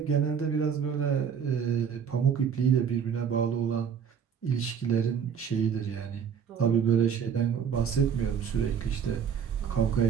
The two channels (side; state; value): left; quieter; 7.3 dB